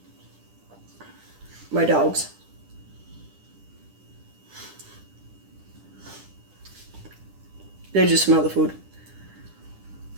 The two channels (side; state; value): left; late; 10 ms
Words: My dogs. They just smell the food.